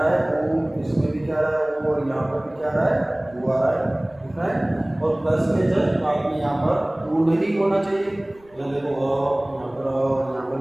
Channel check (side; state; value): left; noise; rumble, 28 dB below the sound